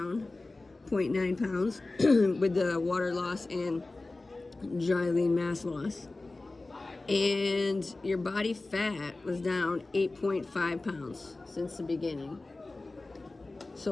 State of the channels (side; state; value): right; quieter; 3.2 dB